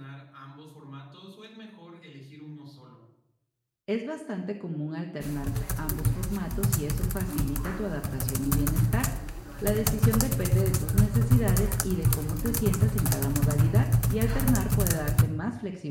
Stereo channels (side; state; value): both; identical; correlation 1.00